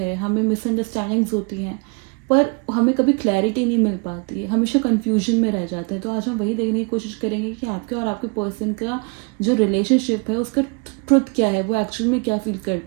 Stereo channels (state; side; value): quieter; left; 32.6 dB